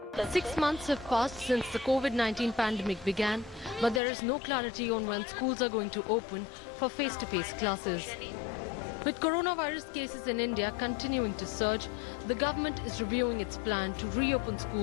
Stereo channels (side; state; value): right; drops out; at 4.0 s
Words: 6 months have passed since the COVID-19 pandemic began, but there is no clarity on when schools are going to open for face-to-face classes. With coronavirus cases in India continuing to surge, the government is reviewing its plan to reopen